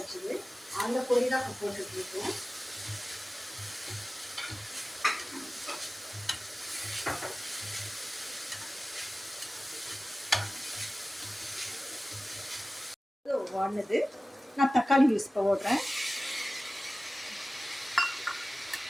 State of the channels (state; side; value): normal; both; correlation 0.96